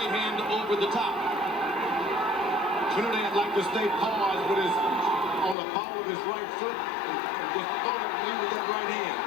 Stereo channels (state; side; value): drops out; right; at 5.6 s